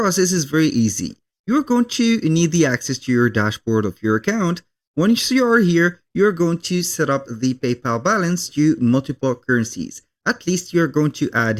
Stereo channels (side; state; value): both; identical; correlation 1.00